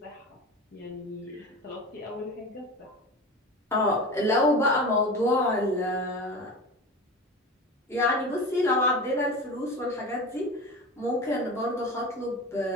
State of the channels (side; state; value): both; normal; correlation 0.31